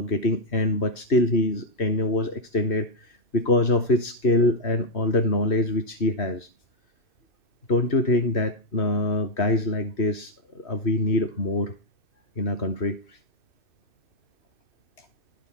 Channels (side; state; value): right; late; 3.1 ms